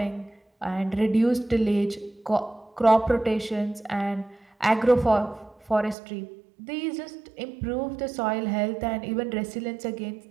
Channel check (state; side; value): drops out; left; at 6.0 s